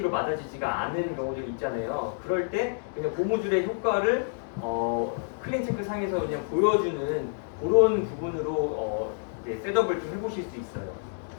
맞아지지가 않은 경우들이 있잖아요. 그럴 때 그냥 고무줄의 효과를 클린 체크 상에서 그냥 보여주는 그런 부분으로 네, 셋업을 좀 해보실 수 있어요.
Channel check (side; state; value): right; silent; digital silence